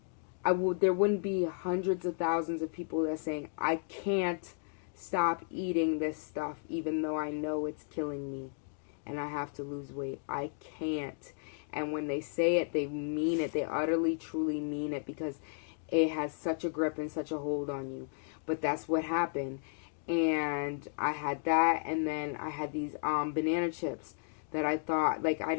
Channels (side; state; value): right; silent; digital silence